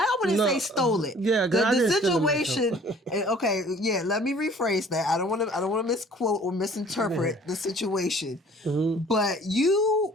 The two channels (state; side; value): normal; both; correlation 0.52